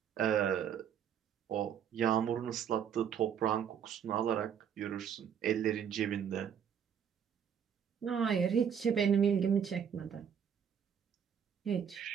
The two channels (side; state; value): left; quieter; 8.2 dB